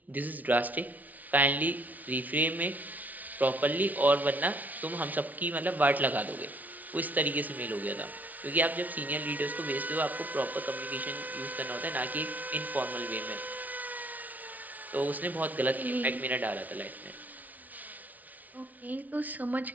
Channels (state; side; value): late; left; 0.076 ms